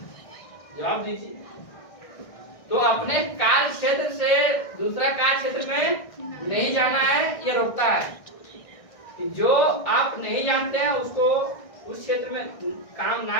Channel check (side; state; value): right; late; 1.6 ms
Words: जवाब दीजिए। तो अपने कार्य क्षेत्र से दूसरा कार्य क्षेत्र में नहीं जाना है, ये रोकता है कि जो आप नहीं जानते हैं उसको उस क्षेत्र में काम